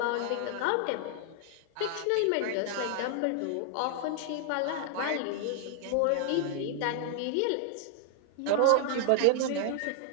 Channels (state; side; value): different; both; correlation 0.00